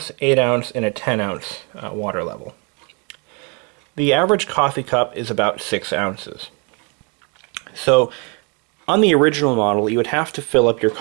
8-ounce, and a 10-ounce water level. The average coffee cup is about 6 ounces. So on the original model, you would have to fill up your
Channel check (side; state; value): left; quieter; 33.4 dB